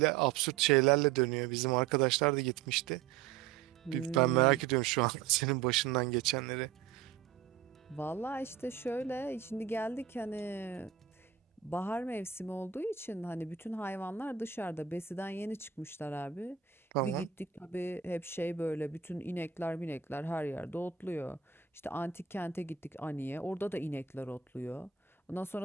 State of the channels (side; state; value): left; quieter; 8.3 dB